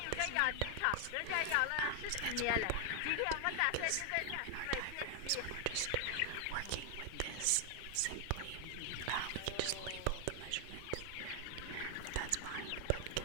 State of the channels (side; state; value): both; different; correlation 0.00